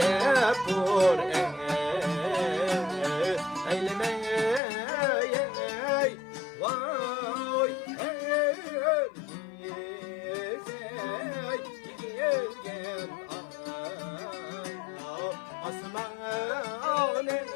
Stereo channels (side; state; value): right; drops out; at 4.6 s